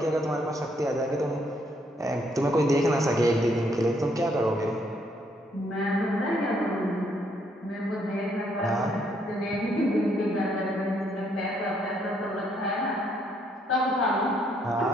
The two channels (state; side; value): normal; both; correlation 0.71